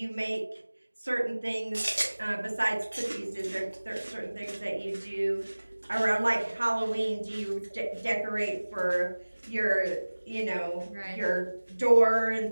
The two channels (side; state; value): both; inverted; correlation -1.00